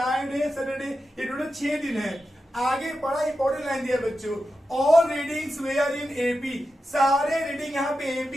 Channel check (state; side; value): normal; both; correlation 0.90